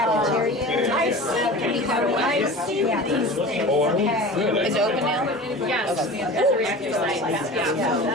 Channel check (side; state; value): both; normal; correlation 0.36